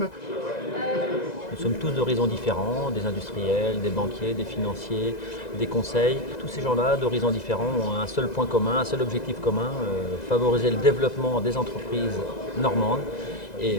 Nous sommes tous d'horizons différents, des industriels, des banquiers, des financiers, des conseils. Tous ces gens-là d'horizons différents ont un seul point commun, un seul objectif commun, favoriser le développement des entreprises normandes et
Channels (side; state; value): right; late; 2.0 ms